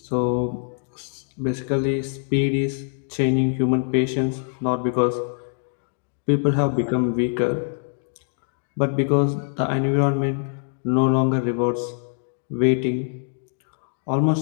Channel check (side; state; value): right; silent; digital silence